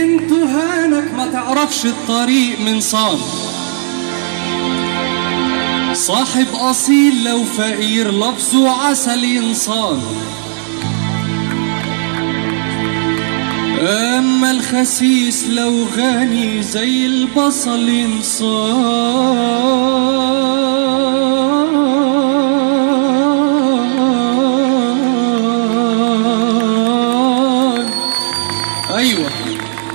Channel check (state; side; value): silent; left; digital silence